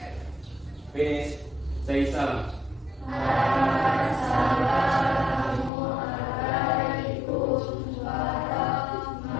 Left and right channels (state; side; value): drops out; right; at 5.7 s